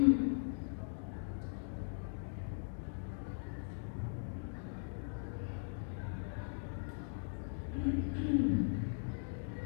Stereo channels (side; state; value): right; silent; digital silence